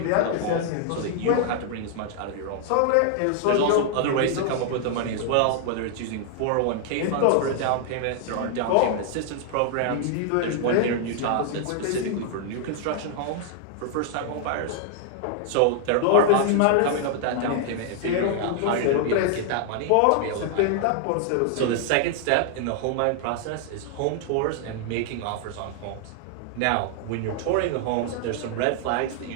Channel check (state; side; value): different; both; correlation 0.00